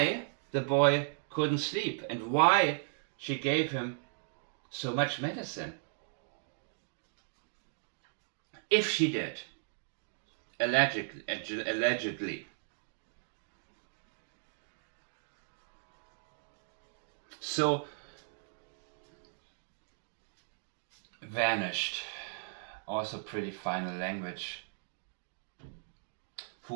the boy couldn't sleep and why she gave him so much medicine? If she did, allegedly. So, vanished. Also pretty final language.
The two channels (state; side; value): silent; left; digital silence